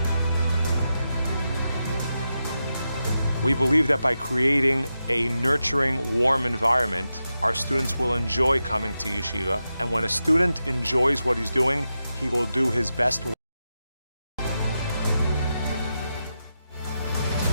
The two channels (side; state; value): both; inverted; correlation -0.89